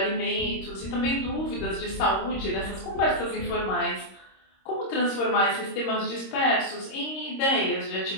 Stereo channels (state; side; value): late; right; 26 ms